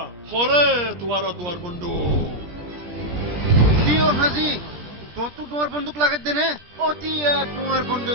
খরে তোমার দুয়ার বন্ধু দিও হাজি তো তুই দুয়ার বন্দুক লাগাত দে নে অতি দুয়ার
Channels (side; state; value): left; late; 17 ms